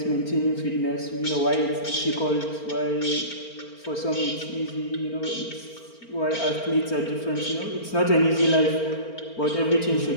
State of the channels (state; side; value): late; right; 4.4 ms